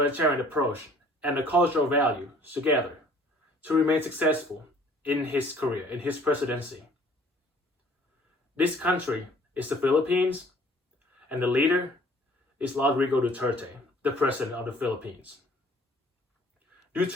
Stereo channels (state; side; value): normal; both; correlation 0.55